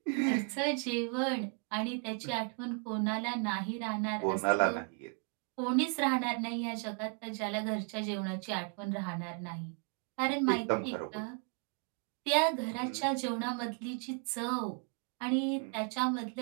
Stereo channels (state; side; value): quieter; left; 39.8 dB